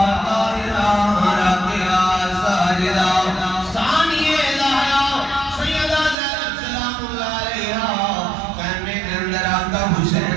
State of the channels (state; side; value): drops out; left; at 6.2 s